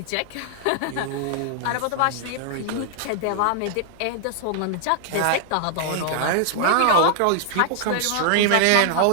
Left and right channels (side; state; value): both; different; correlation 0.00